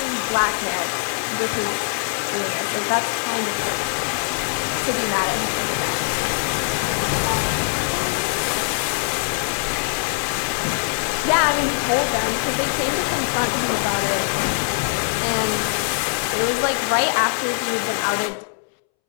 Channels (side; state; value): right; silent; 64 dB below the other